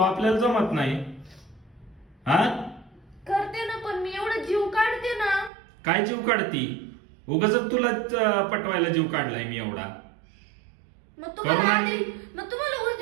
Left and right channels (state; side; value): drops out; left; at 5.5 s